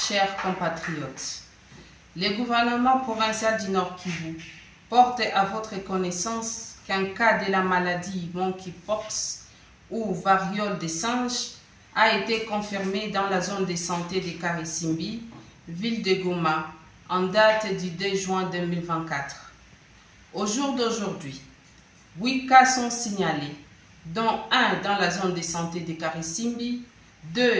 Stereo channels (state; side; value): identical; both; correlation 1.00